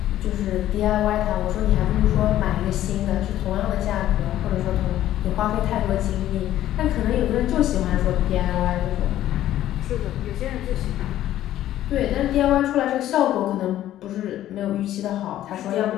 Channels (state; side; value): quieter; right; 12.9 dB